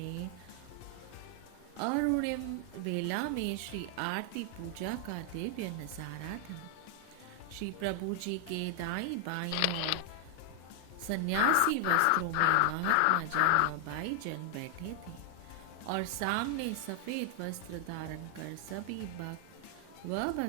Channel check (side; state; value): both; different; correlation 0.00